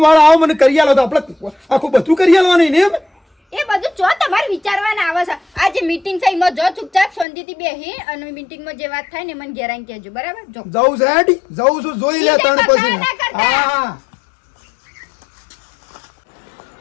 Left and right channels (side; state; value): right; drops out; at 7.2 s